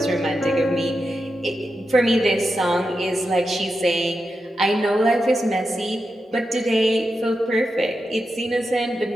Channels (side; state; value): both; normal; correlation 0.88